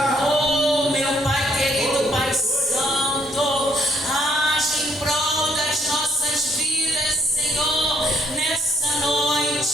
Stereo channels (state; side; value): normal; both; correlation 0.67